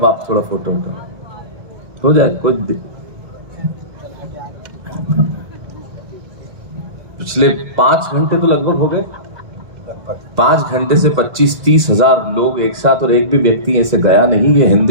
आप थोड़ा फोटो हो जाए। कुछ पिछले 5 घंटे तो लगभग हो गए। 5 घंटे से 25-30 हजार लोग एक साथ, और एक भी व्यक्ति ऐसे गया नहीं। ये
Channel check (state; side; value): late; left; 2.0 ms